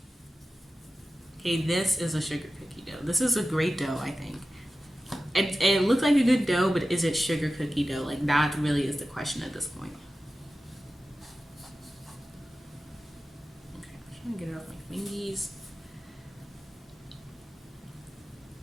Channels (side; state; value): both; normal; correlation 0.94